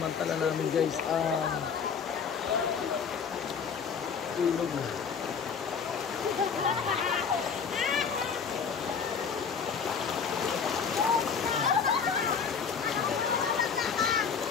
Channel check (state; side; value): quieter; right; 6.3 dB